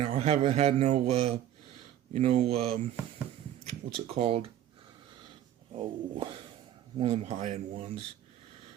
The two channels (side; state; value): left; quieter; 11.5 dB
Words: I haven't had no, what's it called? Oh, one of them high end ones.